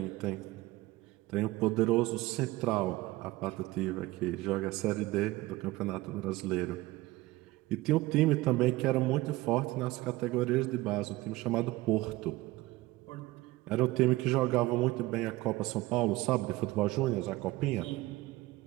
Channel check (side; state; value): left; quieter; 19.0 dB